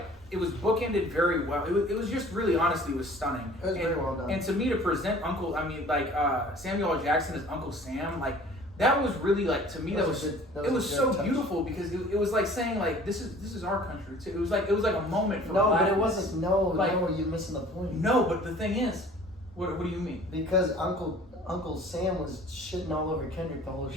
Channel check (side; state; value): both; normal; correlation 0.49